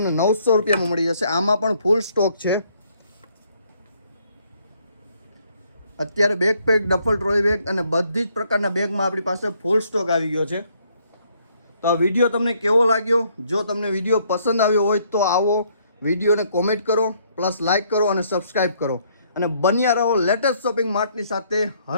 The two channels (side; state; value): both; inverted; correlation -0.67